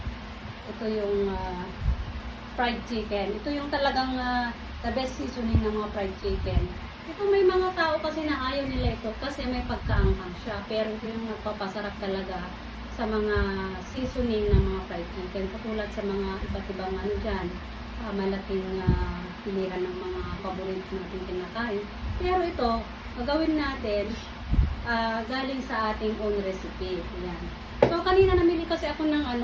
Ito yung fried chicken. Ito yung talagang the best seasoning ng mga fried chicken. Ito may mga tao kasi na ayaw nila ito kasi may pagkaanghang siya. Pero ito yung nagpapasarap talaga sa mga seasoning ng mga fried chicken. Katulad sa mga iba't ibang ano dyan, malaking pilihan ng mga paborito natin kinakain. Pero ito, gagawin natin galing sa ating own recipe. Ayan. So, kanina namili kasi ako ng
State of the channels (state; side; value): identical; both; correlation 1.00